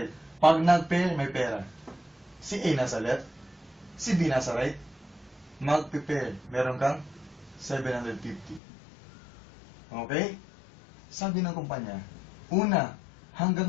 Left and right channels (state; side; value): drops out; right; at 8.6 s